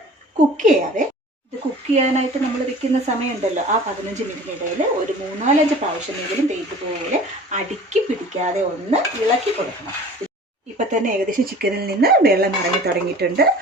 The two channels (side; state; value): both; normal; correlation 0.44